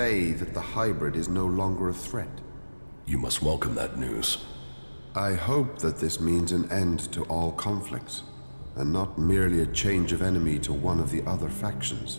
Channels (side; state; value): both; inverted; correlation -1.00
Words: that the hybrid is no longer a threat. You must welcome that news. I hope that this means an end to all conflicts, and not merely a change of enemy to one of the other factions.